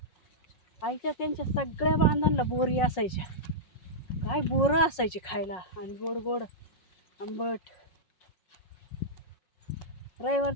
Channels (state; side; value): late; right; 5.5 ms